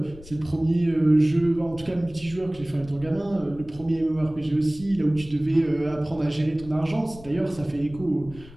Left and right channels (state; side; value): noise; left; rumble, 19 dB below the sound